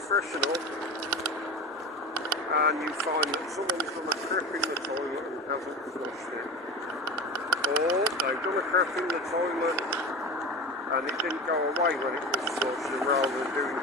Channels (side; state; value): both; normal; correlation 0.30